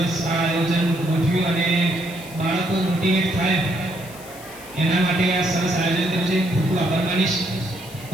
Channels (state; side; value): noise; left; hiss, 18 dB below the sound